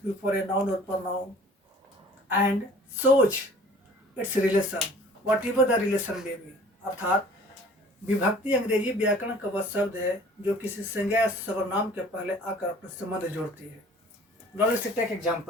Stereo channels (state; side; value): normal; both; correlation 0.50